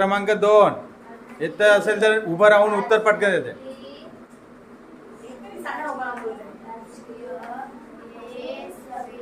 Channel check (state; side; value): identical; both; correlation 1.00